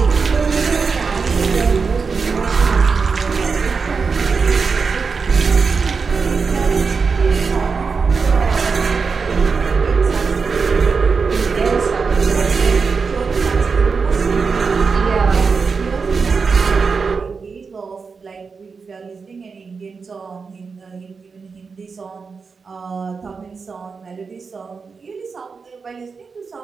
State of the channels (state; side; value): quieter; left; 5.1 dB